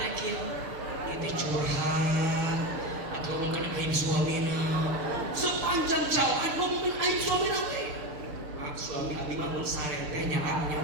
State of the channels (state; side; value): late; left; 6.7 ms